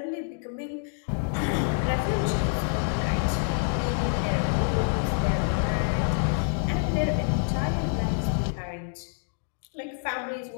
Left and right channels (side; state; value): right; silent; digital silence